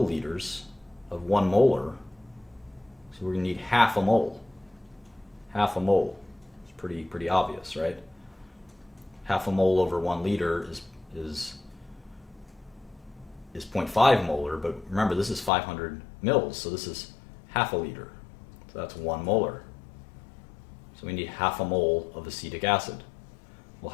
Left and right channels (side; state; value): right; drops out; at 15.5 s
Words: of 1 molar. So we're going to need half a mole. Half a mole. It's pretty obvious, right? Half a mole over 1 liter is 0.5 molar, but remember, this is 500 mils, so this is half a liter. So that's 1 molar. So we need half a mole of acetic acid. Well,